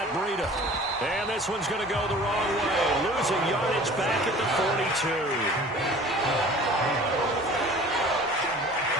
Breida. And this one's going to go the wrong way. Losing yardage back at the 42.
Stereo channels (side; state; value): both; normal; correlation 0.45